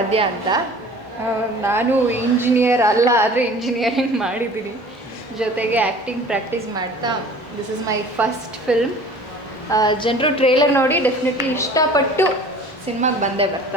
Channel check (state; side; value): normal; both; correlation 0.45